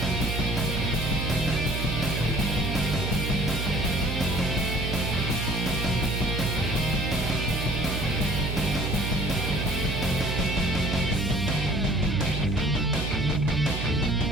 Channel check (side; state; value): right; noise; hum, 3 dB below the sound